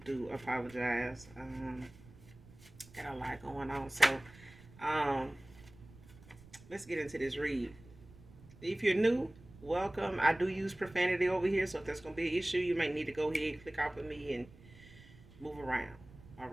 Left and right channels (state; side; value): noise; right; rumble, 21 dB below the sound